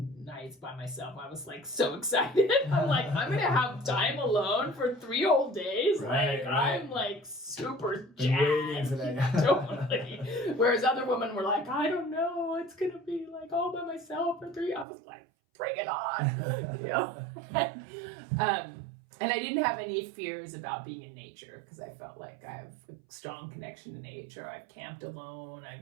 nights by myself. I was like so excited. I'm like, I'm gonna have time alone for 3 whole days. Right. I'm like super jazzed. Totally. Whereas other women were like, I don't know, it's gonna be like all by myself for 3. I was like, bring it on, you know. And I didn't have any fears about being in nature, because I felt like I have a strong connection to nature. I've camped alone.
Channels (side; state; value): left; drops out; at 14.9 s